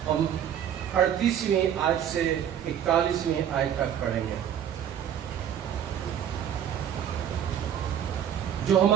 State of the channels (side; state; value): left; quieter; 9.6 dB